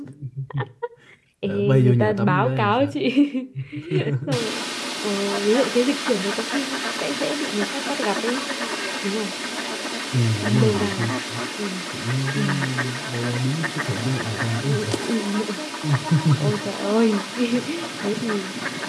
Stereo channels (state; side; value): identical; both; correlation 1.00